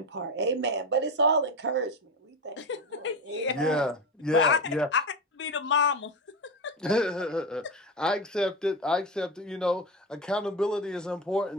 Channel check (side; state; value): both; normal; correlation 0.19